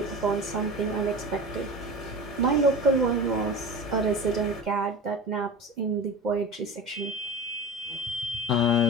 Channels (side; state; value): both; normal; correlation 0.32